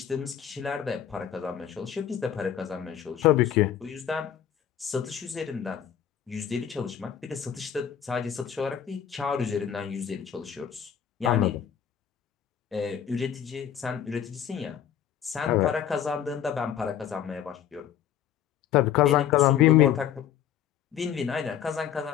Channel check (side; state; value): right; quieter; 9.6 dB